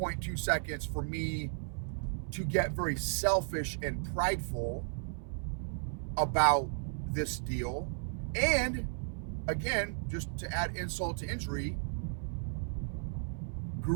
seconds for me to get very selfish and prideful about this deal. And again, just to add insult to injury,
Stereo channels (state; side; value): silent; left; 55 dB below the other